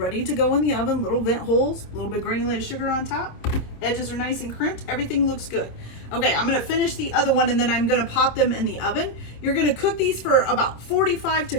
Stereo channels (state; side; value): late; right; 26 ms